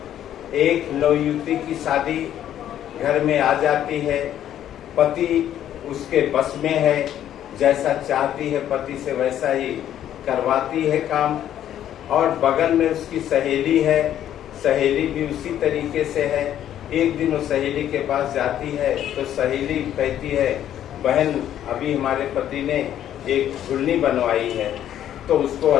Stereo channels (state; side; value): quieter; right; 11.0 dB